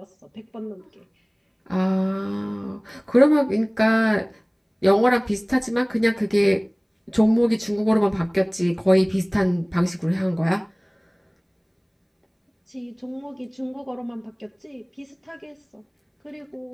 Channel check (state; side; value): identical; both; correlation 1.00